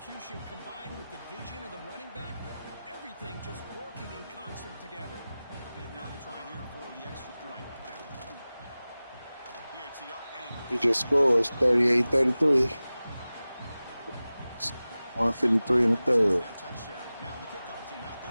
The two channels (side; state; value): both; inverted; correlation -0.97